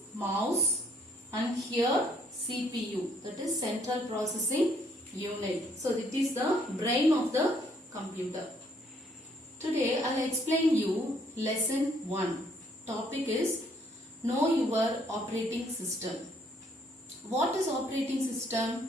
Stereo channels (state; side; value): normal; both; correlation 0.66